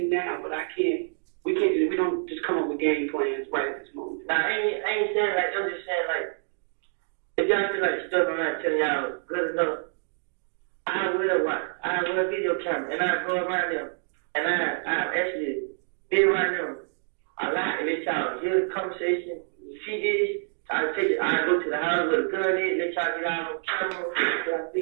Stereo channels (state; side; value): silent; left; digital silence